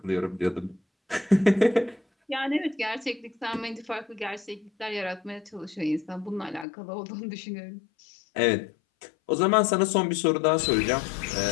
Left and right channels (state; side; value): drops out; right; at 6.7 s